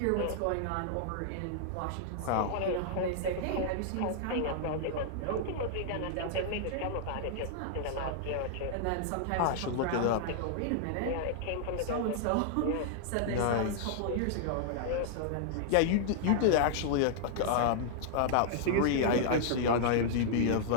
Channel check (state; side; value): different; both; correlation -0.01